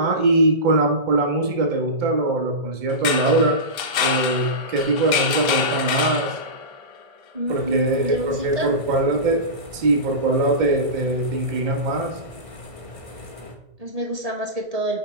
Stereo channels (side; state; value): left; late; 1.3 ms